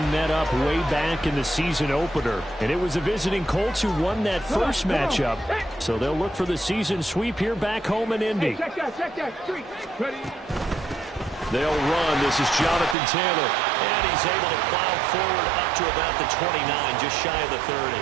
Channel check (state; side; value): drops out; left; at 13.0 s